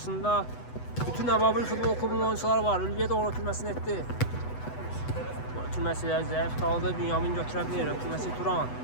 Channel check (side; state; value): right; late; 8.0 ms